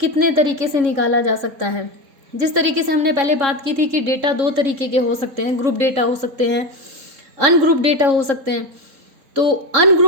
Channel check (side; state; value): left; late; 3.7 ms